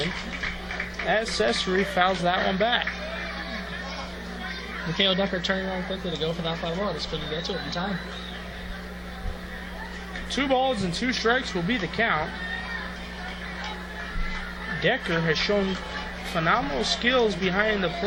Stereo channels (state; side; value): identical; both; correlation 1.00